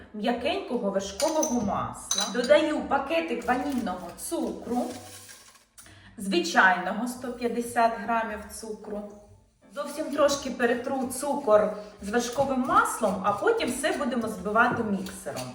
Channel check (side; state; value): both; identical; correlation 1.00